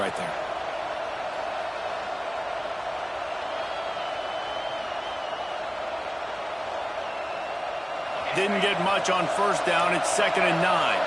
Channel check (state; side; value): identical; both; correlation 1.00